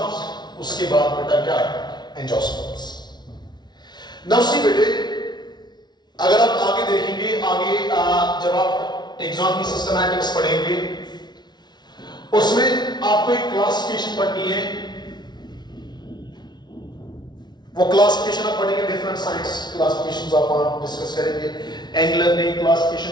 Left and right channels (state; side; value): late; right; 0.20 ms